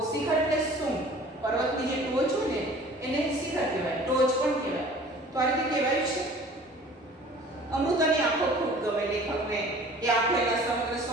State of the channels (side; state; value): both; normal; correlation 0.47